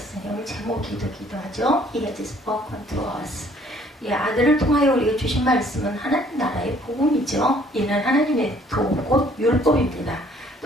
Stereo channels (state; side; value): normal; both; correlation 0.59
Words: 오늘 제목이 기도하죠. He has spoken to us. 아들을 통하여 우리에게 주신 말씀은 하나님 나라의 복음이죠. 이는 하나님의 도, 곧 율법입니다.